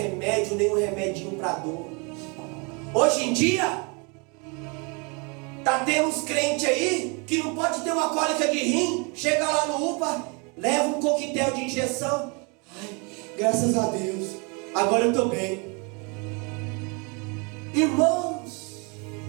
nem um remedinho para dor. Hoje em dia tá tendo uns crentes aí que não pode ter uma cólica de rim, chega lá no UPA, leva um coquetel de injeção. Ai, graças a Deus, agora eu estou bem. Irmãos,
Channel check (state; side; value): quieter; left; 32.0 dB